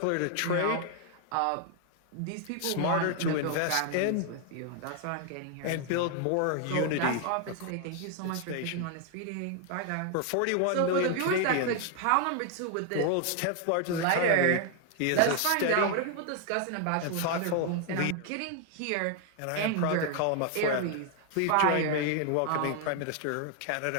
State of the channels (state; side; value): different; both; correlation 0.00